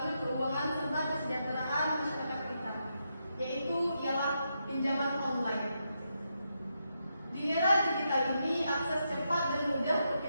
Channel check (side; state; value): both; inverted; correlation -0.83